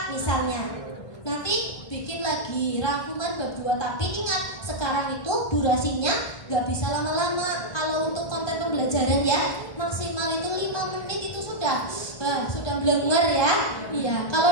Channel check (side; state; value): right; late; 1.3 ms